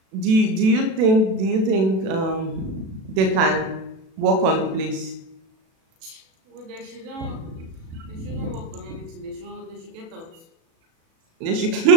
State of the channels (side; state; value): left; late; 37 ms